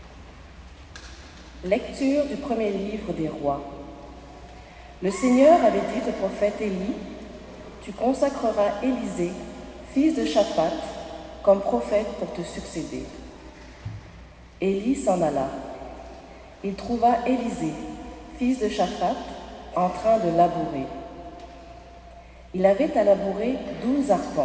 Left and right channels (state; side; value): identical; both; correlation 1.00